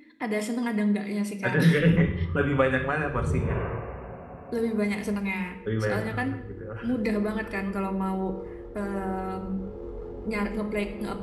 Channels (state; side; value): identical; both; correlation 1.00